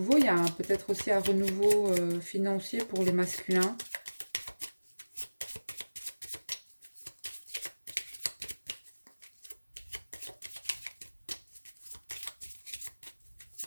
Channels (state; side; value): inverted; both; correlation -1.00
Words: il y a peut-être aussi un renouveau financier pour les masculins.